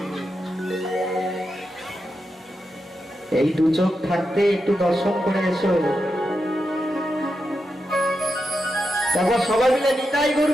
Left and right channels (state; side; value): normal; both; correlation 0.87